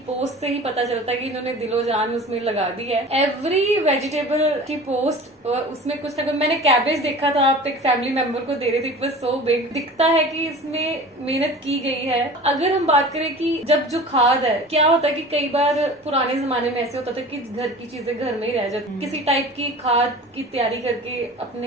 पोस्ट से ही पता चलता है कि इन्होंने दिलो जान उसमें लगा दी है। एवरी वेजिटेबल की पोस्ट उसमें कुछ ना कुछ, मैंने कैबेज देखा था, आप एक फैमिली मेंबर को दे रहे थे, इट वाज सो बिग। दिखता है कि इसमें मेहनत की गई है। अगर हम बात करें कि जब जो खाद है, क्या होता है कि कई बार पुराने जमाने में ऐसे होता था कि घर की चीजें घर में ही रह जाती, किसी टाइप की खाद की तैयारी करके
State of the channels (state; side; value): normal; both; correlation 0.39